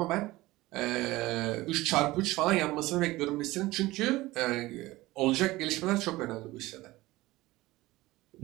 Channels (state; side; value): quieter; left; 18.9 dB